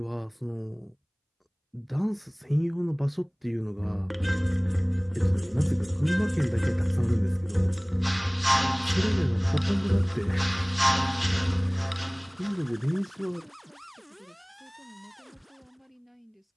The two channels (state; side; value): identical; both; correlation 1.00